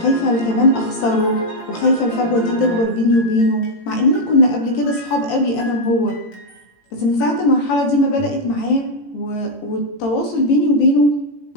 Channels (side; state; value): right; late; 18 ms